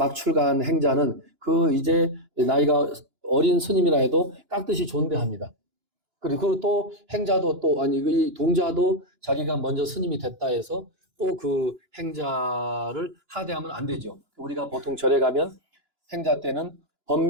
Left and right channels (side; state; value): left; late; 2.9 ms